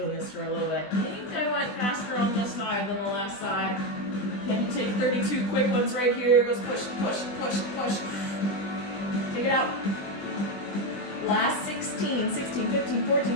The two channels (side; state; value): right; late; 20 ms